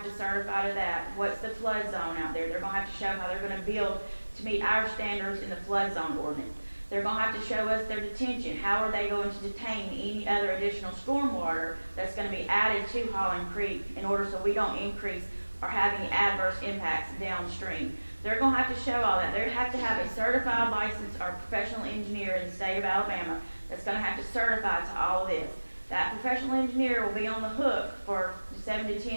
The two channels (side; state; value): both; inverted; correlation -1.00